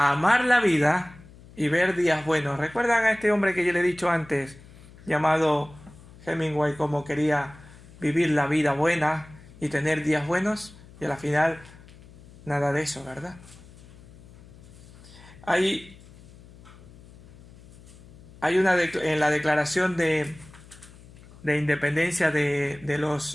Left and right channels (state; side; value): noise; left; hum, 21 dB below the sound